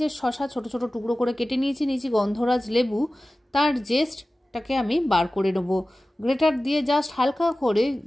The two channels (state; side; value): normal; both; correlation 0.96